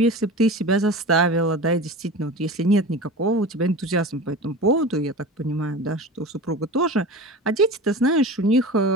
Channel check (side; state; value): both; normal; correlation 0.33